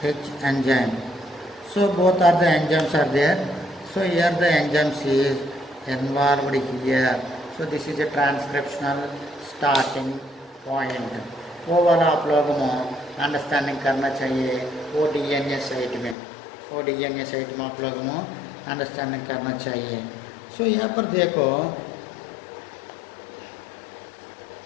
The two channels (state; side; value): drops out; right; at 16.2 s